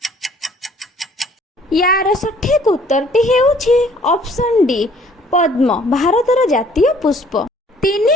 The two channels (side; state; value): both; normal; correlation 0.58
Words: ୟାର ସଠିକ୍ ଉତ୍ତରଟି ହେଉଛି ଅପସନ୍ ଡି ପଦ୍ମ, ଭାରତର ଜାତୀୟ ପୁଷ୍ପ।